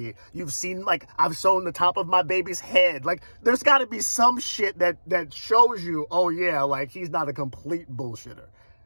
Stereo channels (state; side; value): inverted; both; correlation -1.00